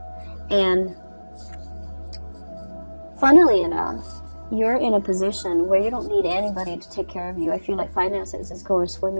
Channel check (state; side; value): inverted; both; correlation -1.00